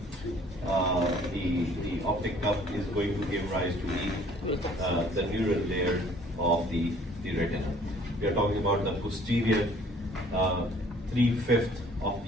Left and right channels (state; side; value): normal; both; correlation 0.56